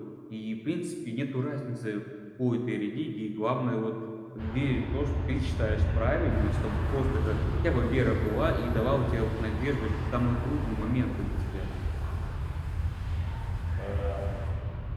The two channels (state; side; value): identical; both; correlation 1.00